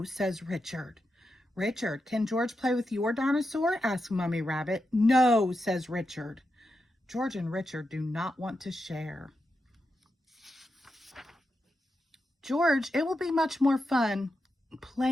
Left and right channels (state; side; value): normal; both; correlation 0.87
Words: says Richard. Richard, can George play with your dinosaur? Asks Mommy Rabbit. No, says Richard. George and Richard do not want to share. George, it will be much more fun